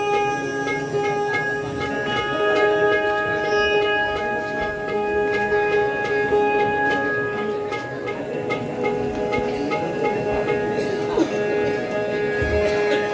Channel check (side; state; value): both; identical; correlation 1.00